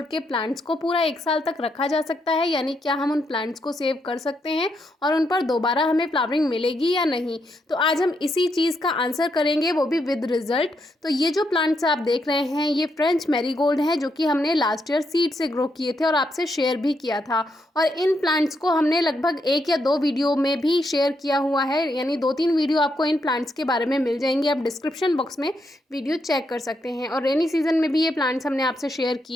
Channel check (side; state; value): both; normal; correlation 0.79